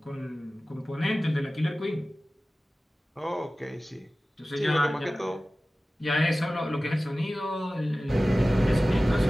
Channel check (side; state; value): both; normal; correlation 0.96